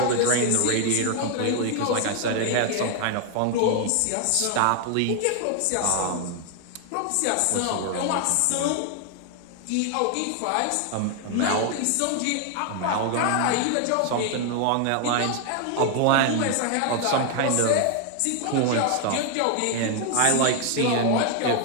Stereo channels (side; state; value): both; different; correlation 0.00